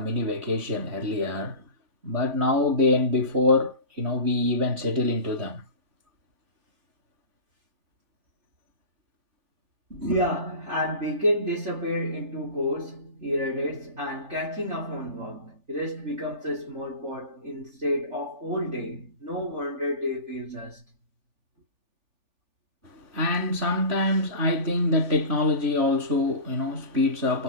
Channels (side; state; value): left; late; 3.4 ms